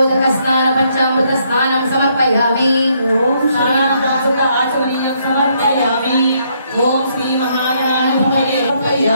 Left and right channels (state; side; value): inverted; both; correlation -0.72